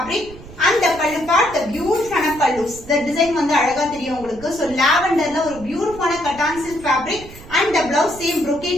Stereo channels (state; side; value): noise; right; rumble, 18 dB below the sound